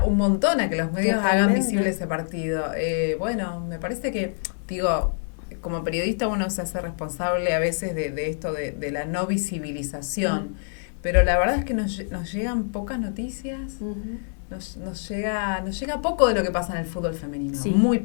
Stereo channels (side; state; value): right; silent; 61 dB below the other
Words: un montón a que los medios hagan visible ese partido. Bueno, me parece que, digo, como periodista uno se hace responsable a veces de esto de la no visibilización, pero la verdad es que nos llegan pocas noticias, nos llega poco de lo que pasa en el fútbol femenino, muy